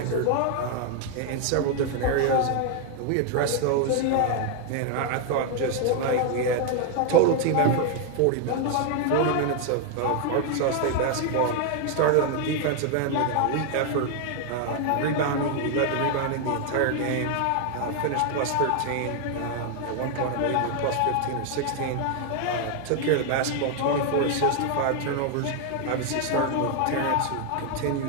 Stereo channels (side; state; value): both; different; correlation 0.00